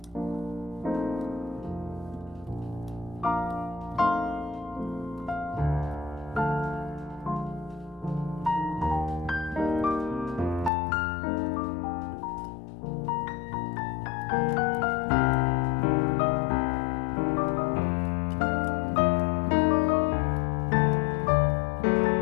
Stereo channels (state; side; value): drops out; right; at 10.7 s